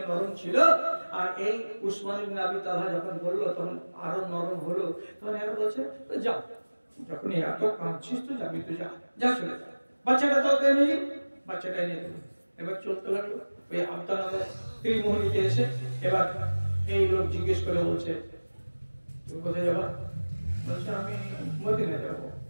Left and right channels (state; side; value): inverted; both; correlation -1.00